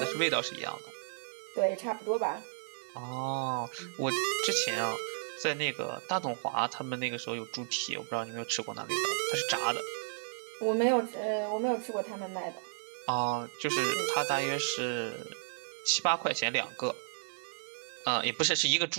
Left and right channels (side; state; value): left; silent; digital silence